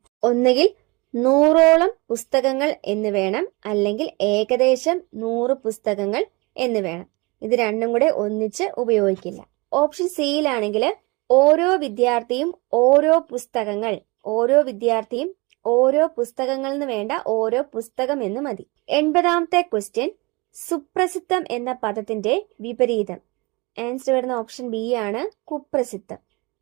ഒന്നുകിൽ 100ഓളം പുസ്തകങ്ങൾ എന്ന് വേണം, അല്ലെങ്കിൽ ഏകദേശം 100 പുസ്തകങ്ങൾ എന്ന് വേണം. ഇത് രണ്ടും കൂടെ ഒന്നിച്ച് ഉപയോഗിക്കില്ല. ഓപ്ഷൻ സിയിലാണെങ്കിൽ ഓരോ വിദ്യാർത്ഥിയും ഓരോ പുസ്തകങ്ങൾ, ഓരോ വിദ്യാർത്ഥിയും ഓരോ പുസ്തകങ്ങൾ എന്ന് വേണ്ട, ഓരോ പുസ്തകം എന്ന് മതി. 80ാമത്തെ ക്വസ്റ്റ്യൻ, സുപ്രസിദ്ധം എന്ന പദത്തിന്റെ വിപരീതം. ആൻസർ വരുന്ന ഓപ്ഷൻ ബി ആണ്, കുപ്രസിദ്ധം.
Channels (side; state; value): left; quieter; 26.2 dB